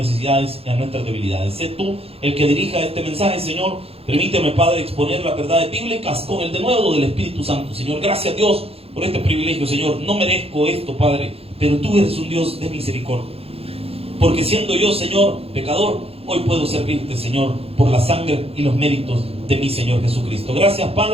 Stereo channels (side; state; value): left; late; 0.28 ms